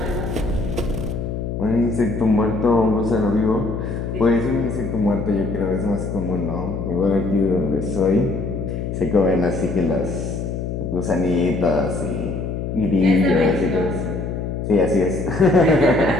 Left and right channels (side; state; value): left; noise; hum, 4 dB below the sound